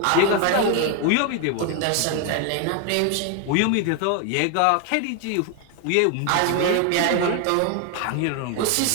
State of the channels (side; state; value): both; different; correlation 0.01